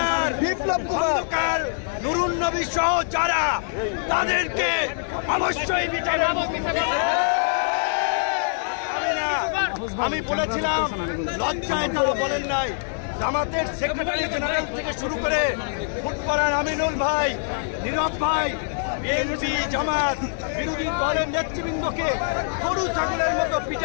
বিপ্লব খন্দকার, নুরুন নবী সহ যারা, তাদেরকে অবশ্যই বিচার। আমি বলেছিলাম লজ্জায় তারা বলেন নাই। জামাতের সেক্রেটারি জেনারেল থেকে শুরু করে ফুটবলার আমিনুল ভাই, নীরব ভাই, বিএনপি জামাত বিরোধী দলের নেতৃবৃন্দকে গরু ছাগলের মতো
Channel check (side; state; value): right; silent; digital silence